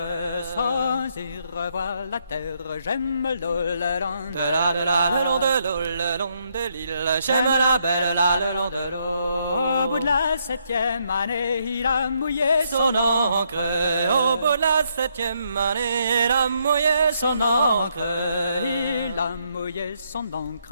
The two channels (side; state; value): both; inverted; correlation -0.75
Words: Sans y revoir la terre. J'aime l'eau le long le long de l'eau, le long de l'île. J'aime la belle là le long de l'eau. Au bout de la 7e année, il a mouillé son encre. Au bout de la 7e année, il a mouillé son encre. Il a mouillé son